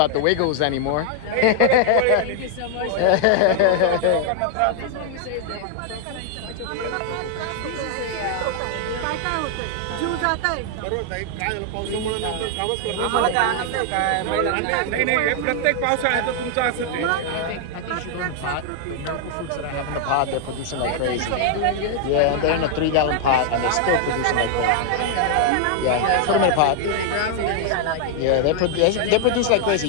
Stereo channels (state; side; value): different; both; correlation 0.00